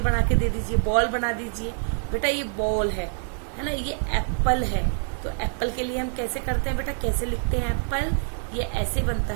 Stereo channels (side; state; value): left; silent; digital silence